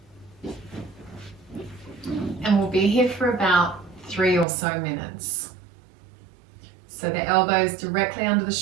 And we'll be here for about 3 or so minutes. So the elbows directly under the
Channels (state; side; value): drops out; left; at 4.5 s